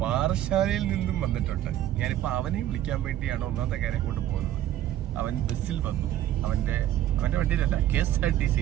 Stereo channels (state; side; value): quieter; left; 12.6 dB